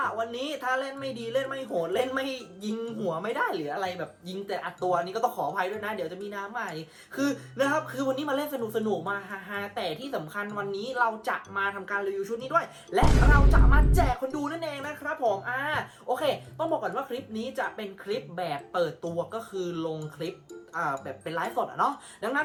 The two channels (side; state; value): both; identical; correlation 1.00